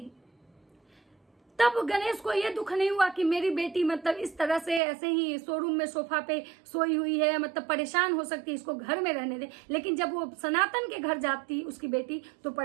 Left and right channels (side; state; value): left; drops out; at 4.8 s